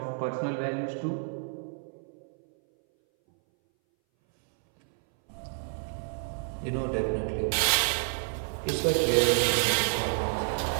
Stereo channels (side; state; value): left; silent; 58 dB below the other